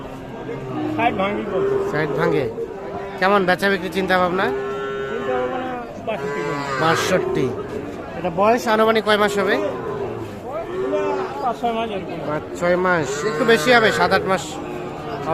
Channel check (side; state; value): both; identical; correlation 1.00